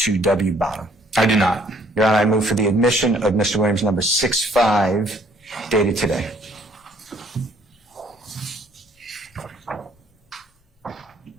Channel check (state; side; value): normal; both; correlation 0.61